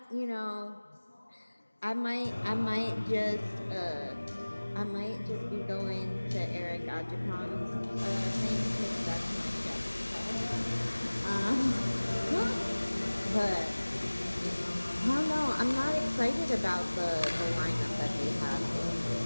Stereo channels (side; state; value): both; inverted; correlation -1.00